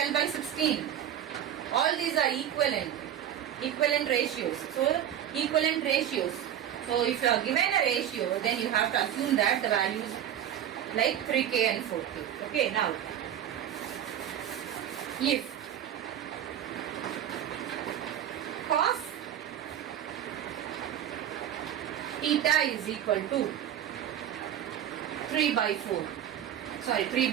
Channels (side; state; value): left; quieter; 10.4 dB